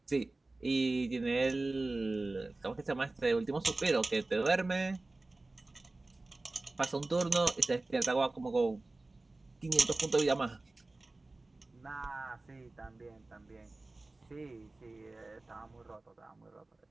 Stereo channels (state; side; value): quieter; left; 3.1 dB